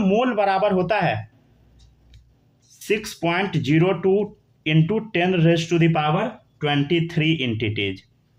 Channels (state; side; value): identical; both; correlation 1.00